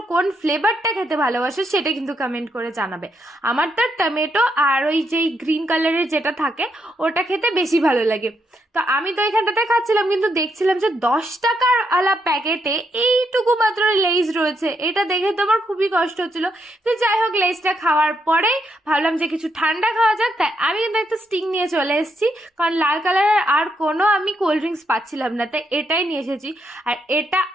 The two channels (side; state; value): both; normal; correlation 0.78